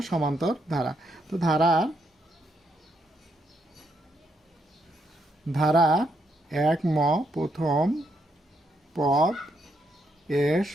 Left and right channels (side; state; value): both; normal; correlation 0.77